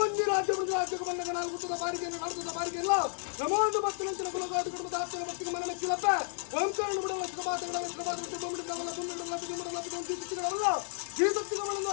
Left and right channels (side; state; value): right; silent; 56 dB below the other